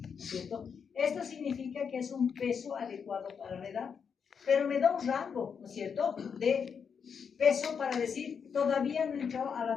¿cierto? Esto significa que es un peso adecuado para la edad, pero me da un rango, ¿no es cierto?, de peso para decir, todavía no entró a la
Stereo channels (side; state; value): right; quieter; 6.6 dB